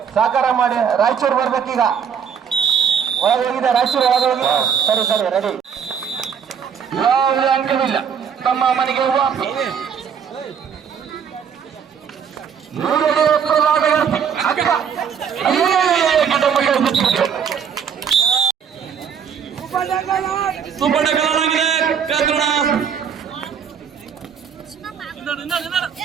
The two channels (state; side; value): quieter; left; 7.4 dB